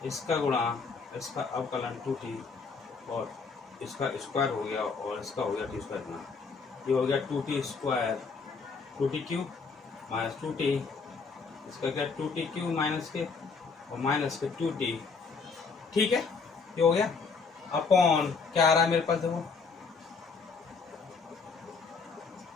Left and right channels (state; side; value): quieter; right; 4.9 dB